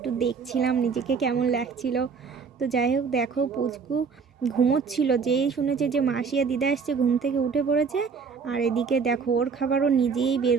দেখছিলাম নিজেকে কেমন লাগছিল। তো যাই হোক দেখো পুচকু ঘুমোচ্ছিল, যেই শুনেছে যে মাসি আর দিদা আসছে ঘুম থেকে উঠে পড়েছে। আর এদিকে দেখো ওর খাবারও নিজেই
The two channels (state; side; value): quieter; left; 5.6 dB